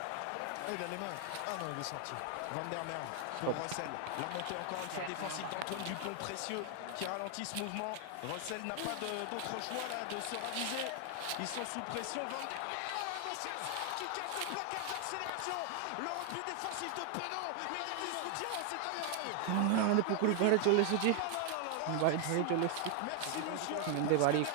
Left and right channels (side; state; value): both; different; correlation 0.00